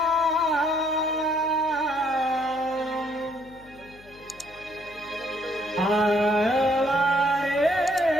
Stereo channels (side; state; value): left; noise; hum, 25 dB below the sound